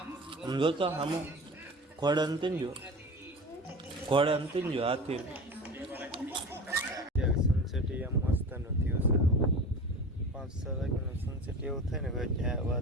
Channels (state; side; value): normal; both; correlation 0.34